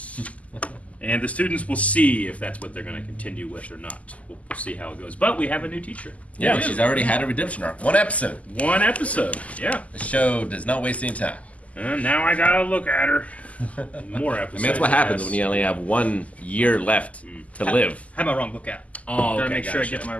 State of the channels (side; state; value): right; late; 0.070 ms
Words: And the students will see if that's what they're going to continue with or not. We'll see how it goes. But we have a new teacher. Yeah, she's already had a redemption arc. One episode. One episode, yeah. The show does not waste any time. And now I gotta look at her. More episodes. I mean, that's what happens when you only have 1 year left to live. I have my wrong book out. Oh, Gotta okay, make sure I gotcha. get my